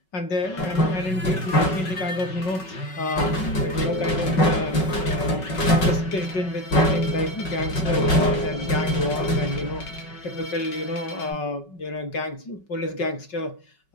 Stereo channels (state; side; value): late; right; 5.3 ms